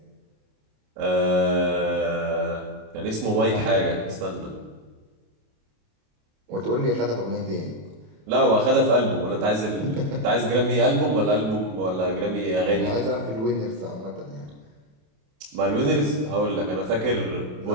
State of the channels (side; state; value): left; late; 27 ms